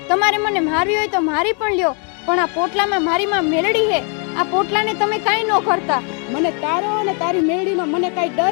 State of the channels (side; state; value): right; quieter; 38.5 dB